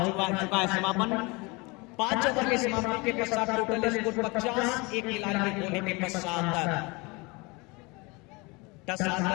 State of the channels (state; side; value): quieter; right; 26.6 dB